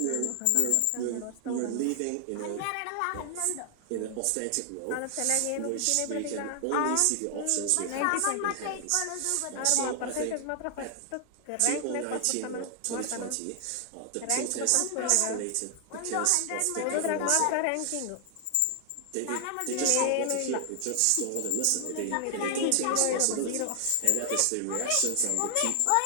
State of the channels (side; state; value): both; different; correlation 0.00